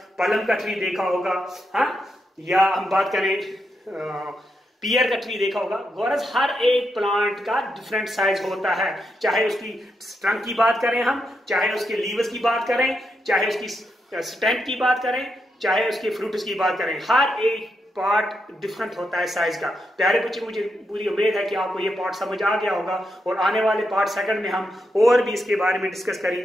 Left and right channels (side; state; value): both; normal; correlation 0.83